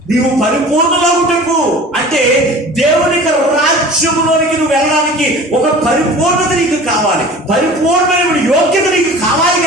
నీవు పరిపూర్ణులకు అంటే దేవుని రాజ్యములోనికి నువ్వు వెళ్ళడానికి ఒక పరిపూర్ణత నీకు కావాలి, పరిపూర్ణమైన యోగ్యత నీకు కావాలి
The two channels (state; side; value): normal; both; correlation 0.41